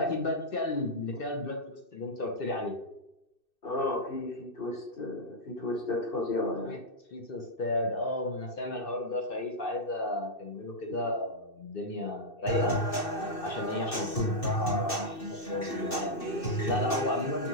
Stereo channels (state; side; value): late; right; 2.6 ms